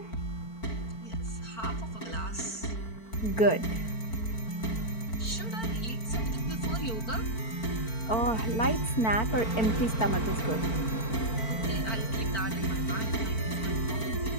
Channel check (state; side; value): late; right; 4.5 ms